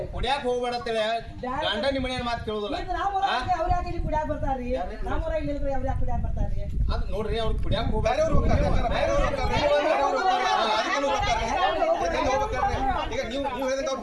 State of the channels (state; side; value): identical; both; correlation 1.00